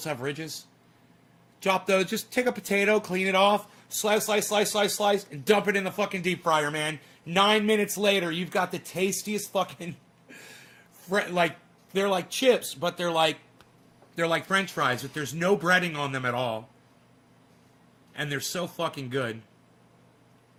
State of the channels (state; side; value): identical; both; correlation 1.00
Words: have ridges. Chop those. Just take a potato, clean it off, slice, and dump it in the fucking deep fryer, man. 9 minutes later, you've got the tastiest fucking, like, they're like chips, but they're like French fries, but there's no breading on them at all. And they're so fucking good.